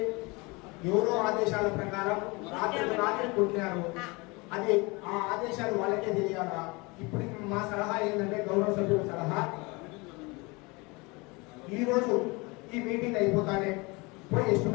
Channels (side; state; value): right; quieter; 26.2 dB